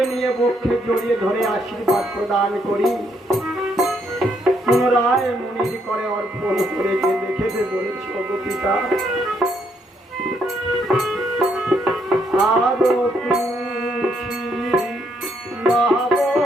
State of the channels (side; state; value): both; normal; correlation 0.73